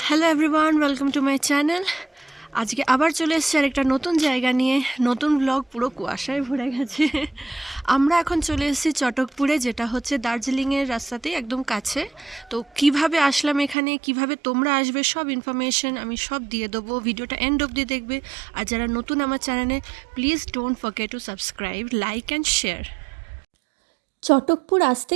Hello everyone, welcome to my channel. আজকে আবার চলে এসেছি আর একটা নতুন জায়গা নিয়ে, নতুন ব্লগ। পুরো কুয়াশায় ভরে গেছে। আমরা এখন চলে এসেছি চটকপুরে, যেটা হচ্ছে দার্জিলিংয়ের রাস্তাতেই একদম কাছে। তো কিভাবে আসলাম এখানে, কিভাবে তোমরা আসবে, সব ইনফরমেশন আমি সব দিয়ে দেবো। ভিডিওটা এন্ড অবধি দেখবে। আর যারা নতুন আমার চ্যানেলে, please don't forget to subscribe, like and share. Chatakpur আসতে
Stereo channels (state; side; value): drops out; left; at 13.8 s